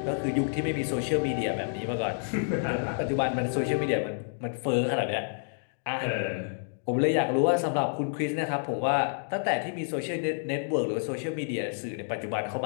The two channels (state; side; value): silent; right; digital silence